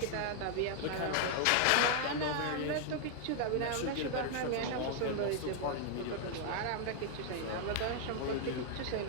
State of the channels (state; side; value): different; both; correlation 0.00